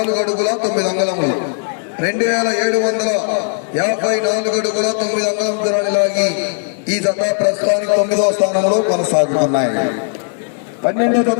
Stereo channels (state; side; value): silent; right; 66 dB below the other